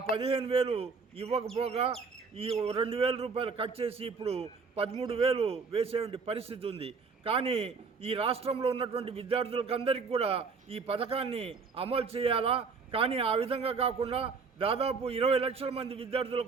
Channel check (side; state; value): left; quieter; 4.9 dB